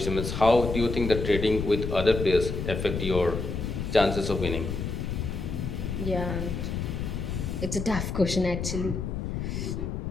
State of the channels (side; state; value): left; noise; rumble, 3 dB below the sound